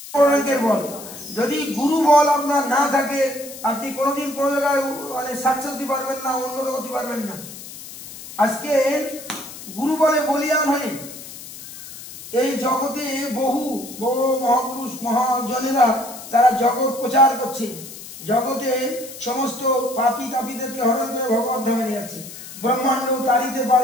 অপরাঙ্কের বল। যদি গুরু বল আপনার না থাকে আপনি কোনোদিন কোনো জায়গায় মানে সাকসেস দিতে পারবেন না, উন্নত করতে পারবেন না। আজকে গুরু বলে বলিয়ান হয়ে এই জগতে বহু বড় মহাপুরুষ মহাজনেরা তারা জগৎ প্রচার করছে, জগতে সমস্ত পাপী তাপীদেরকে হরণ করে ভগবত ধামে নিয়ে যাচ্ছে। ব্রহ্মাণ্ড তাড়িতে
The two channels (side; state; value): left; noise; hiss, 14 dB below the sound